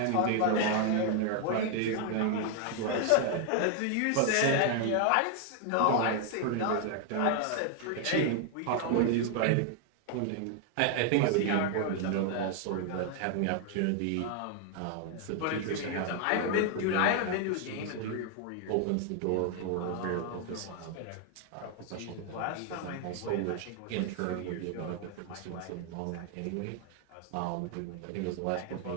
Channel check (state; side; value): different; both; correlation 0.00